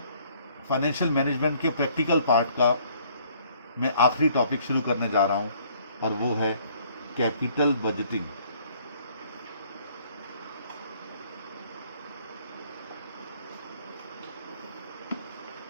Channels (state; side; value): inverted; both; correlation -0.61